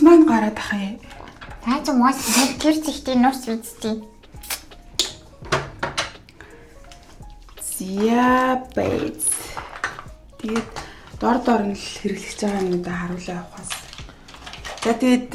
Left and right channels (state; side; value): identical; both; correlation 1.00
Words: маань гараад ах юм. Та ч мос тэр зихтэй нус үзтий. Зя бэйс. Тэгээд дор нь л хэрэглэж байгаа юмудаа харуулаа явахаас. За